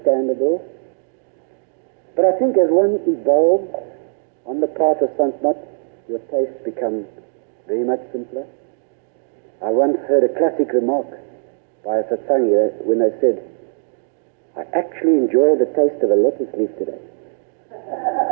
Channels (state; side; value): silent; left; digital silence